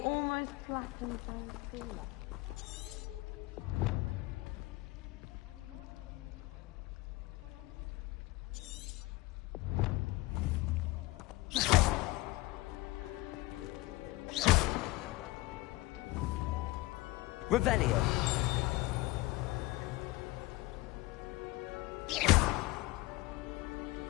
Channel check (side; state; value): right; quieter; 20.5 dB